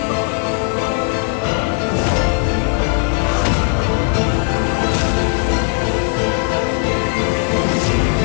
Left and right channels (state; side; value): quieter; right; 39.2 dB